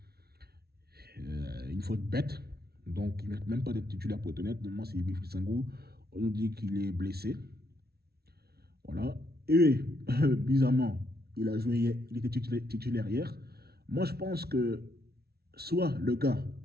Une faute bête. Donc, il ne mérite même pas d'être titulaire pour être honnête. Normalement, c'est Wilfried Sangou. On nous dit qu'il est blessé. Voilà. Et, bizarrement, il était titulaire hier. Moi, je pense que soit le gars,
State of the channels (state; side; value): late; left; 0.45 ms